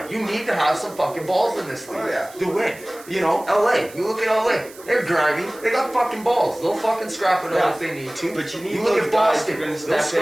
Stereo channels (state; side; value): noise; right; hiss, 20 dB below the sound